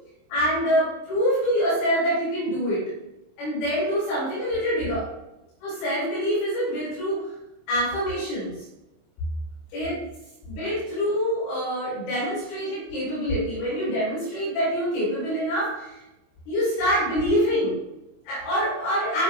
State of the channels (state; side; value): late; right; 26 ms